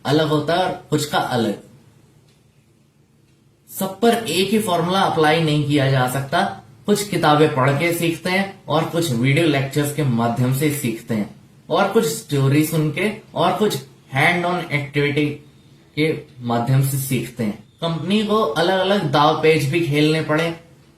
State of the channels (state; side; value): identical; both; correlation 1.00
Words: अलग होता है और कुछ का अलग। सब पर एक ही फॉर्मूला अप्लाई नहीं किया जा सकता। कुछ किताबें पढ़ के सीखते हैं और कुछ वीडियो लेक्चर्स के माध्यम से सीखते हैं और कुछ स्टोरी सुन के और कुछ हैंड ऑन एक्टिविटी के माध्यम से सीखते हैं। कंपनी को अलग अलग दाव पेच भी खेलने पड़े।